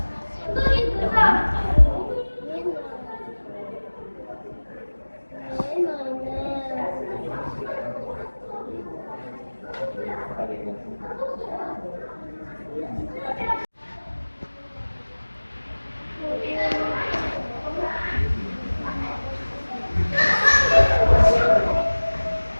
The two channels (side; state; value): both; inverted; correlation -1.00